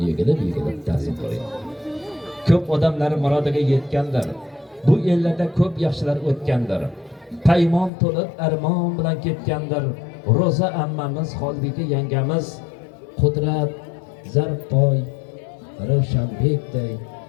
egilib ta'zim qiling. Ko'p odamlar murodiga yetgandir. Bu ellarda ko'p yaxshilar o'tgandir. Paymon to'lib armon bilan ketgandir. Roza ammamiz, Xolbika yangamiz, Qudrat, Zarboy, Ravshanbekday,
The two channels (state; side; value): drops out; right; at 7.9 s